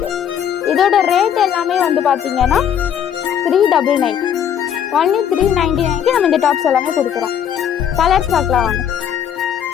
இதோட ரேட் எல்லாமே வந்து பாத்தீங்கன்னா 399 ஒன்லி 399க்கு நம்ம இந்த டாப்ஸ் எல்லாமே கொடுக்குறோம். கலர்ஸ் பார்க்கலாம் வாங்க.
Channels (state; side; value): quieter; right; 9.0 dB